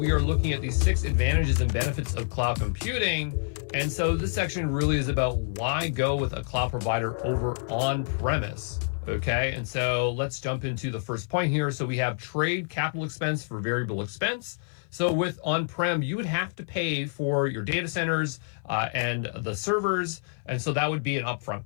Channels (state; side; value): silent; right; 56 dB below the other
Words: are looking at the 6 advantages and benefits of cloud computing. And so this section really is about why go with a cloud provider over on-premise. Okay, and so let's jump into the first point here. So we have trade capital expense for variable expense. So with on-prem, you would have to pay for your data centers and the servers. And so that would be an upfront